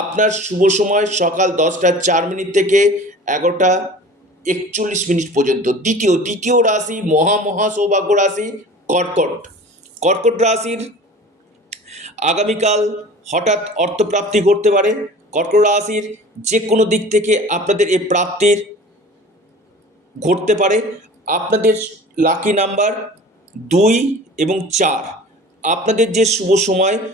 শুভ সময় সকাল 10টা 4 মিনিট থেকে 11টা 41 মিনিট পর্যন্ত। দ্বিতীয় রাশি মহা সৌভাগ্য রাশি কর্কট। কর্কট রাশির আগামীকাল হঠাৎ অর্থপ্রাপ্তি ঘটতে পারে। কর্কট রাশির যে কোনো দিক থেকে আপনাদের এই প্রাপ্তির ঘটতে পারে। আপনাদের লাকি নাম্বার 2 এবং 4। আপনাদের যে শুভ সময়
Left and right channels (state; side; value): normal; both; correlation 0.41